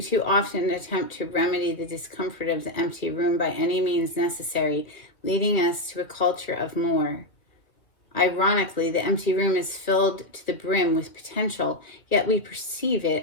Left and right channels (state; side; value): late; right; 2.3 ms